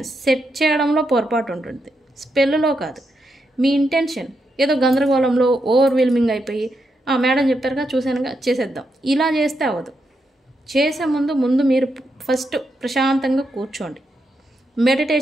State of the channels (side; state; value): both; normal; correlation 0.83